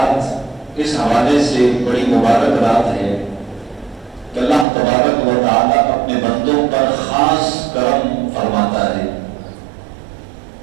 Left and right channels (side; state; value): left; drops out; at 4.7 s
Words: اس حوالے سے بڑی مبارک رات ہے کہ اللہ تبارک و تعالیٰ اپنے بندوں پر خاص کرم فرماتا ہے۔